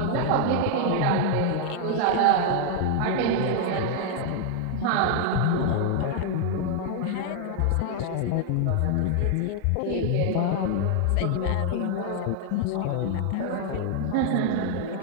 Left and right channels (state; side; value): different; both; correlation 0.00